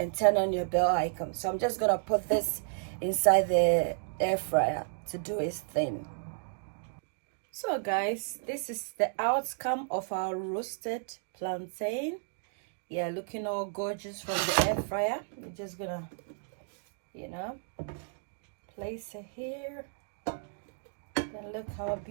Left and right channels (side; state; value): left; silent; digital silence